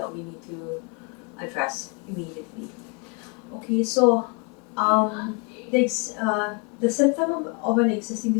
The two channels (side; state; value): right; quieter; 34.0 dB